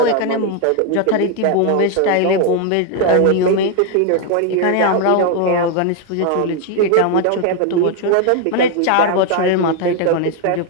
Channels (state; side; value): different; both; correlation 0.01